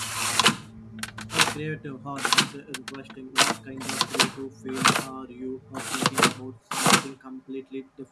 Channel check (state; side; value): identical; both; correlation 1.00